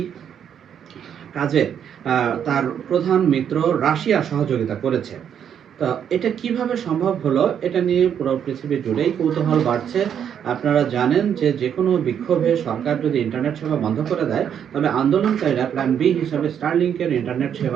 কাজে তার প্রধান মিত্র রাশিয়া সহযোগিতা করেছে। তো এটা কিভাবে সম্ভব হলো, এটা নিয়ে পুরো পৃথিবী জুড়েই কৌতূহল বাড়ছে। আপনারা জানেন যে যে কোনো বিক্ষোভে সরকার যদি ইন্টারনেট সেবা বন্ধ করে দেয়, তবে আন্দোলনকারীরা প্ল্যান বি হিসাবে স্টারলিংকের ইন্টারনেট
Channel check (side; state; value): left; quieter; 8.6 dB